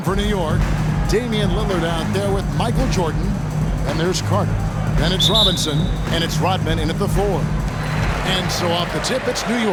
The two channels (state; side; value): identical; both; correlation 1.00